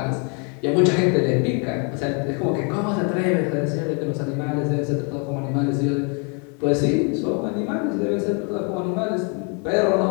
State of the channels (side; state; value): right; quieter; 34.8 dB